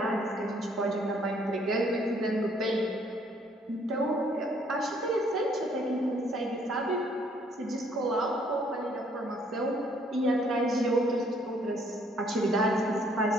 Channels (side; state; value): both; normal; correlation 0.64